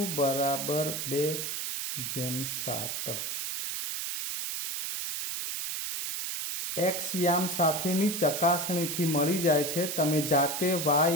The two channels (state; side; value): noise; right; hiss, 3 dB below the sound